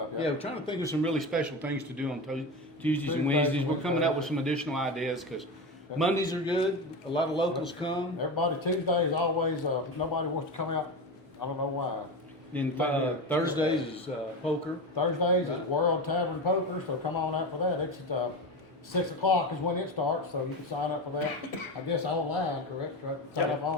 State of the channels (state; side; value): normal; both; correlation 0.21